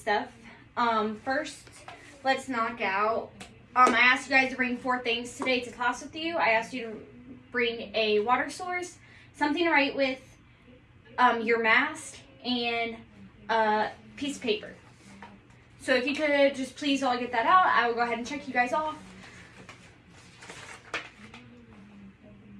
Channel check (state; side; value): identical; both; correlation 1.00